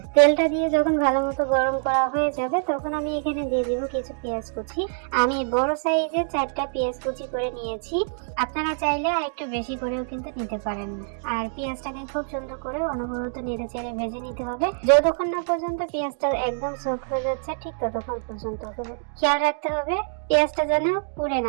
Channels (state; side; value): silent; left; digital silence